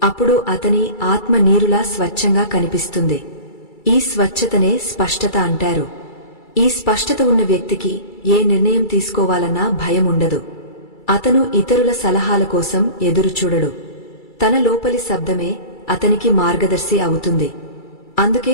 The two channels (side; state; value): right; late; 2.3 ms